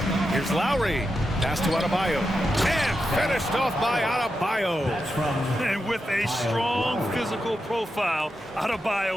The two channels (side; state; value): both; normal; correlation 0.88